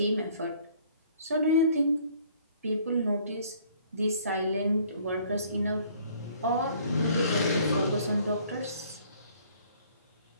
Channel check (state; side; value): inverted; both; correlation -0.58